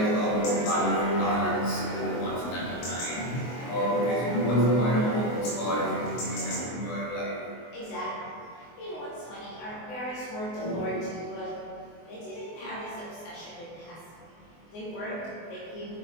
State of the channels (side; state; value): right; late; 24 ms